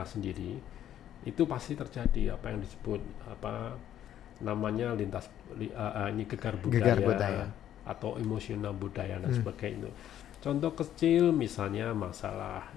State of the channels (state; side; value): quieter; right; 11.2 dB